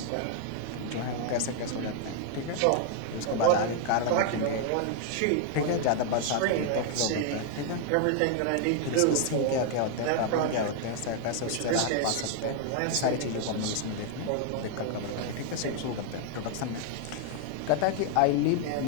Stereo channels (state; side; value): different; both; correlation 0.00